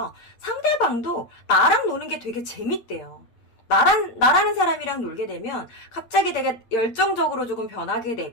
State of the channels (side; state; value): right; late; 8.7 ms